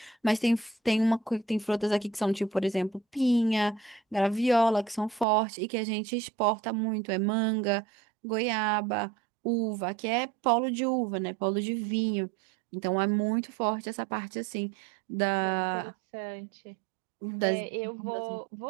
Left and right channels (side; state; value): left; drops out; at 5.2 s